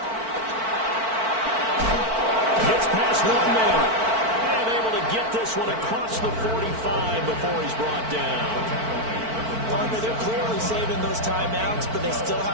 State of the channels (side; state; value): left; late; 4.5 ms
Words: Gets past one man. And able to get this one across the 45 before he's brought down. Partner, they're clearly saving those timeouts, but they still